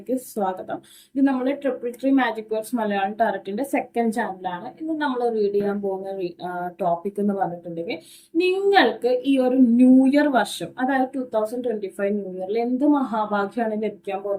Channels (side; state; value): both; identical; correlation 1.00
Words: സ്വാഗതം. ഇത് നമ്മൾ ട്രിപ്പിൾ മാജിക് വേർഡ്സ് മലയാളം ടാരറ്റിന്റെ സെക്കൻഡ് ചാനലാണ്. ഇന്ന് നമ്മൾ റീഡ് ചെയ്യാൻ പോകുന്ന ടോപ്പിക് എന്ന് പറഞ്ഞിട്ടുണ്ടെങ്കിൽ, നിങ്ങൾക്ക് ഈ ഒരു ന്യൂ ഇയർ വർഷം, അതായത് 2025 ന്യൂ ഇയറിൽ എന്ത് മഹാഭാഗ്യമാണ് ലഭിക്കാൻ